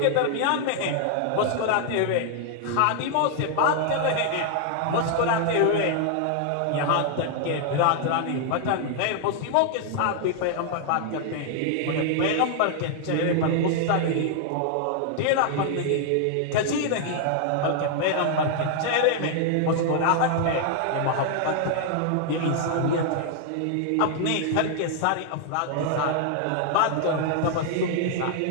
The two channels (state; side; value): different; both; correlation 0.00